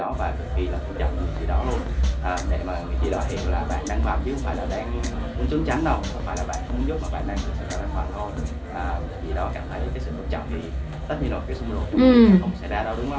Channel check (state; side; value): identical; both; correlation 1.00